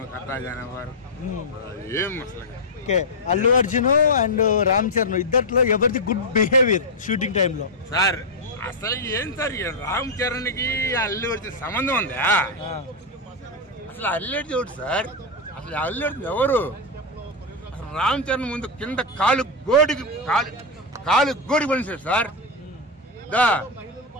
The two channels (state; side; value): normal; both; correlation 0.00